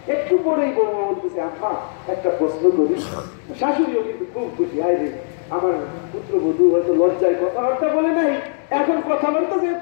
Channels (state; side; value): silent; right; digital silence